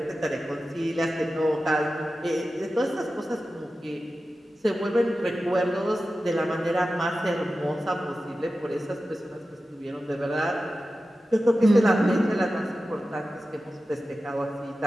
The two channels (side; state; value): both; normal; correlation 0.94